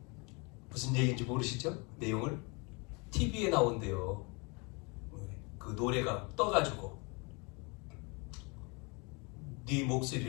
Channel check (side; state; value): right; quieter; 30.3 dB